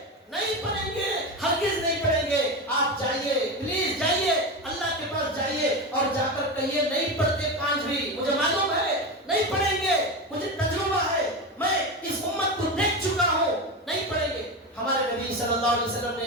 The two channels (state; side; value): normal; both; correlation 0.19